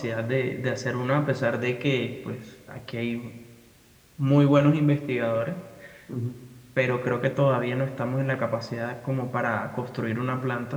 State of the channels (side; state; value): both; identical; correlation 1.00